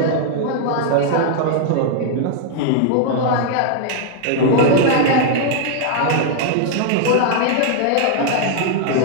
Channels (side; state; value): both; different; correlation 0.00